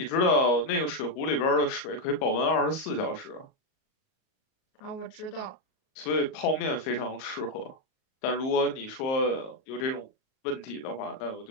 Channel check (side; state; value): right; late; 38 ms